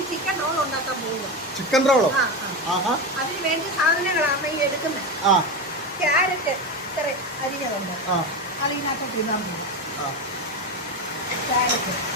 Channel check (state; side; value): normal; both; correlation 0.17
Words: ചിക്കൻ റോൾ ഉണ്ടാക്കാൻ പോകുക. ചിക്കൻ റോളോ? അതിന് വേണ്ടി സാധനങ്ങളാണ് ഈ എടുക്കുന്നത്. ക്യാരറ്റ് ഇത്ര അരിഞ്ഞതുണ്ട്, അതിനകത്തോട്ട് ഇടാൻ പോകും. ക്യാരറ്റ്,